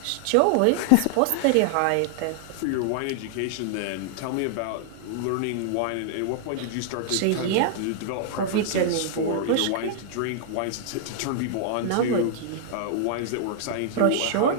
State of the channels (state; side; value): different; both; correlation -0.01